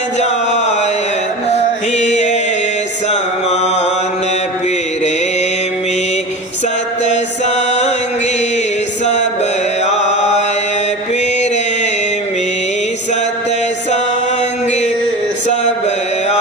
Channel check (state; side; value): normal; both; correlation 0.30